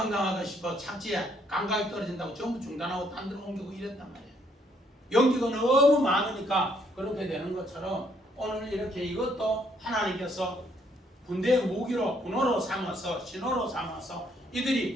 싶어 착지에 감각이 떨어진다고 전부 중단하고 딴 데로 옮기고 이랬단 말이에요. 연기가 너무 많으니까 그렇게 되는 것처럼 오늘 이렇게 이것도 하나님께서 군대의 무기로 군호로 삼아서 신호로 삼아서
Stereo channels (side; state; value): both; normal; correlation 0.69